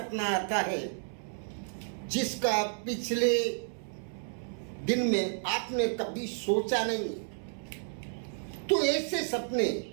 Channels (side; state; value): left; silent; 57 dB below the other